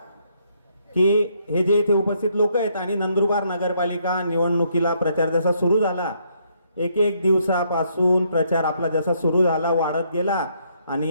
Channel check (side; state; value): both; inverted; correlation -0.72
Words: की हे जे इथे उपस्थित लोक आहेत आणि नंदुरबार नगरपालिका निवडणुकीला प्रचार जसा सुरू झाला, एक दिवसापासून प्रचार आपला जसा सुरू झाला, वाढत गेला